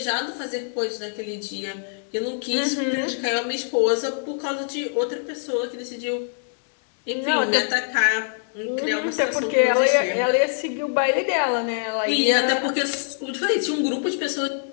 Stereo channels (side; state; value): right; silent; digital silence